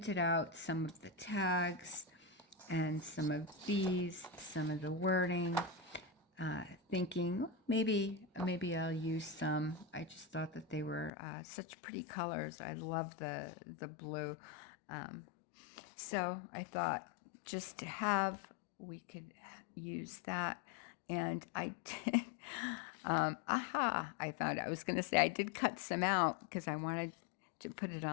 out some of the tags and some of these, some of the wording, thinking maybe I'll use some. I just thought that they were such pretty colors. I love the blue. So I thought just to have, we could use that. And I did, I found out. I was going to say I did cut some out because I wanted to put it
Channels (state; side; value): drops out; right; at 11.1 s